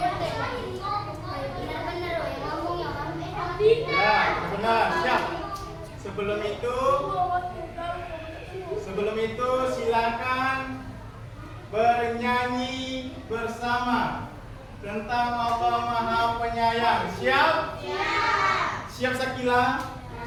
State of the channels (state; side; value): identical; both; correlation 1.00